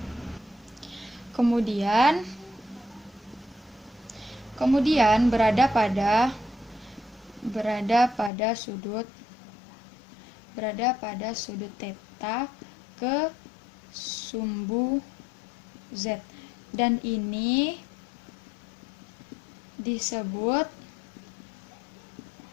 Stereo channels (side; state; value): right; drops out; at 8.3 s